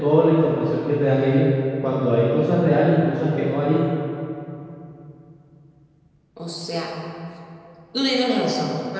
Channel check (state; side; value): identical; both; correlation 1.00